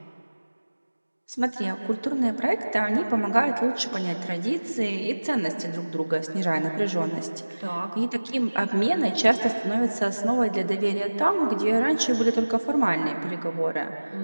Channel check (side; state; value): both; inverted; correlation -1.00